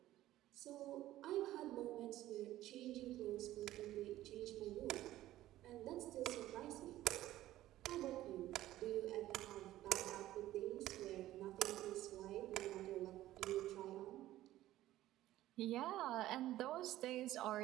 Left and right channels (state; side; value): quieter; left; 14.7 dB